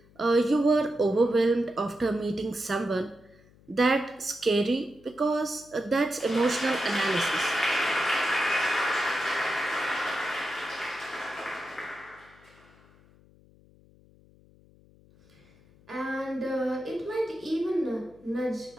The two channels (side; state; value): left; noise; hum, 28 dB below the sound